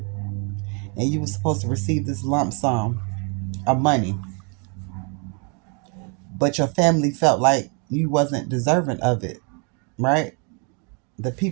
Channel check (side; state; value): left; quieter; 35.7 dB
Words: and you were supposed to receive this lump sum of money, but your family felt like you wasn't deserving of it, right? The